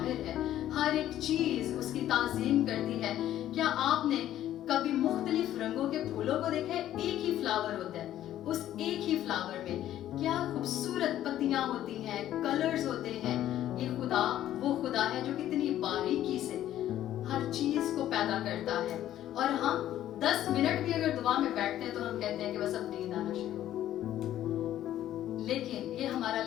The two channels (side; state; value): right; quieter; 12.4 dB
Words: ہے, ہر ایک چیز اس کی تعظیم کرتی ہے. کیا آپ نے کبھی مختلف رنگوں کے پھولوں کو دیکھا ہے؟ ایک ہی فلاور ہوتا ہے, اس ایک ہی فلاور میں کیا خوبصورت پتیاں ہوتی ہیں, کلرز ہوتے ہیں. یہ خدا وہ خدا ہے جو کتنی باریکی سے ہر چیز کو پیدا کرتا ہے. اور ہم 10 منٹ بھی اگر دعا میں بیٹھتے ہیں تو ہم کہتے ہیں کہ بس اب نیند آنا شروع ہو. لیکن یہ ہمارا